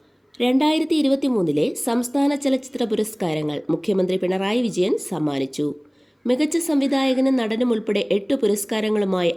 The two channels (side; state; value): both; identical; correlation 1.00